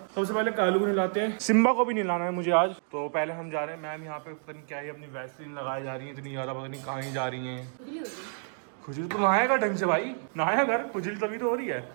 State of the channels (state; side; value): silent; left; digital silence